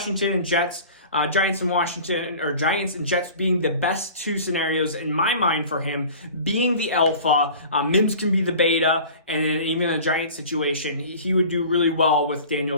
and Jets, Giants and Jets being the best 2 scenarios in my mind for him, being the alpha, Mims can be the beta, and then even in a Giant situation, he would do really well with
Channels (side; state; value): both; inverted; correlation -0.43